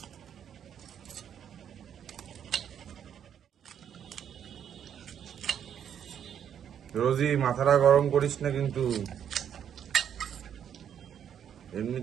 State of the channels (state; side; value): quieter; left; 8.9 dB